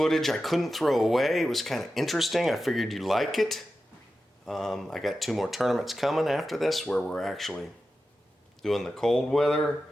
I couldn't throw away. It was kind of interesting. I figured you'd like it. I got 2 more tournaments coming after this where we're actually doing the cold weather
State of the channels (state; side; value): normal; both; correlation 0.92